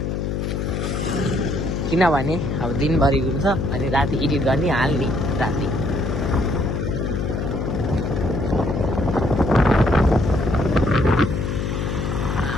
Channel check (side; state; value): left; noise; hum, 2 dB below the sound